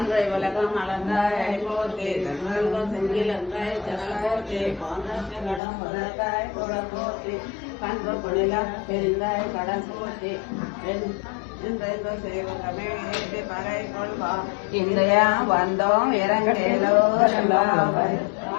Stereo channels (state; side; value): drops out; right; at 5.6 s